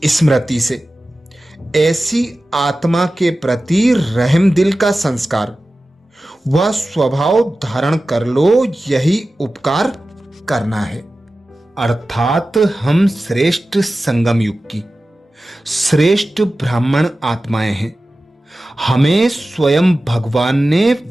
स्मृति से ऐसी आत्मा के प्रति रहम दिल का संस्कार वह स्वभाव धारण कर लो, यही उपकार करना है। अर्थात हम श्रेष्ठ संगम युग की श्रेष्ठ ब्राह्मण आत्माएं हैं। हमें स्वयं भगवान ने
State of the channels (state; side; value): normal; both; correlation 0.95